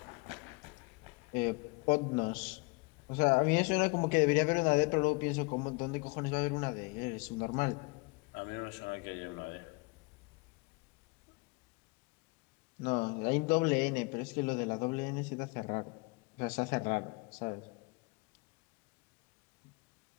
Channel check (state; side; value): quieter; right; 27.6 dB